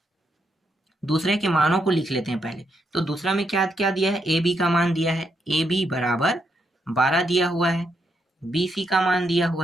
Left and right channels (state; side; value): normal; both; correlation 0.79